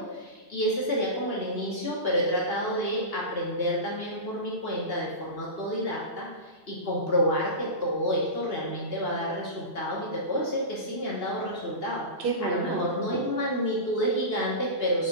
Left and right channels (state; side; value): late; left; 2.6 ms